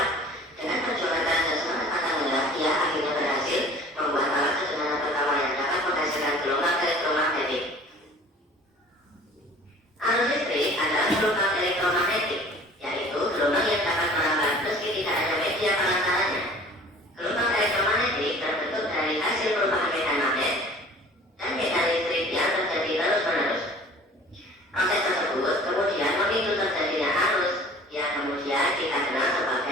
Dengan perjuangan keras dan semangat pantang dia akhirnya berhasil membuat alat sederhana pertama yang dapat menghasilkan gelombang elektromagnetik. Arus listrik adalah gelombang elektromagnetik, yaitu gelombang yang dapat merambat meski tidak ada media pengantarnya. Gelombang elektromagnetik terbentuk dari hasil perubahan medan magnet dan medan listrik yang terjadi terus-menerus. Proses tersebut kemudian memicu terjadinya arus yang kemudian kita kenal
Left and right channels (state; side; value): normal; both; correlation 0.47